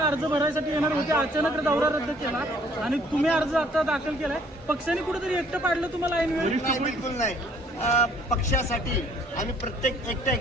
भरायसाठी येणार होते, अचानक दौरा रद्द केला आणि तुम्ही अर्ज आता दाखल केलाय. पक्षाने कुठेतरी एकटं पाडलं तुम्हाला ऐनवेळी? बिलकुल नाही. पक्षासाठी आम्ही प्रत्येक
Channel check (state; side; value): normal; both; correlation 0.60